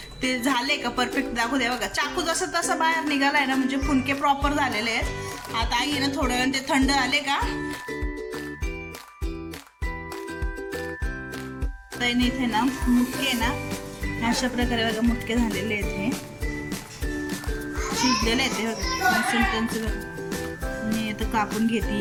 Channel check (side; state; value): both; identical; correlation 1.00